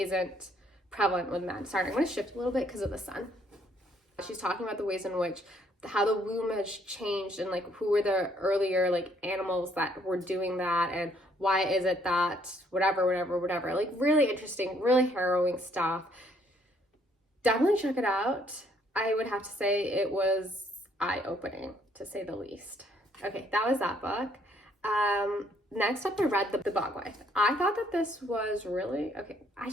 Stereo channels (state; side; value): normal; both; correlation 0.66